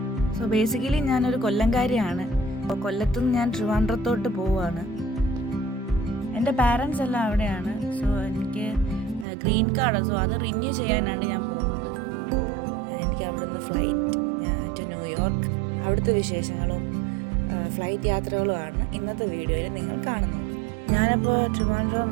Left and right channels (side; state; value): left; drops out; at 9.2 s